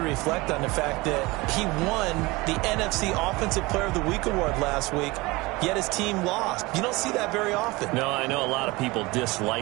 reflect on the fact that he won the NFC Offensive Player of the Week award last week, yet his team lost. You don't see that very often. No, I know a lot of people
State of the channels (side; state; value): left; quieter; 22.5 dB